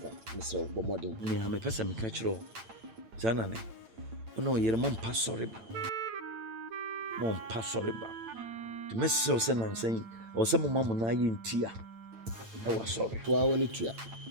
Mr. Bomodi. Ni ha me pesa me ka kiro. Zana ne. Ono yere mo mpa sorry ba. Mo mpa sorry ba. The message say na say o se mo mamu na aye ntia. I was sorry. To our nature.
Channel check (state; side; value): late; left; 8.9 ms